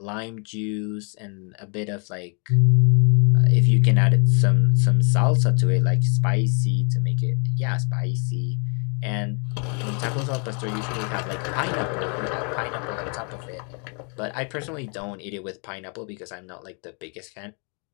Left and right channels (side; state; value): right; quieter; 39.1 dB